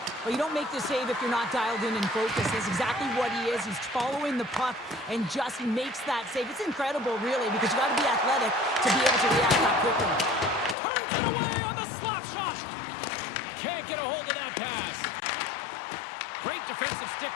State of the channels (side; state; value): right; drops out; at 10.8 s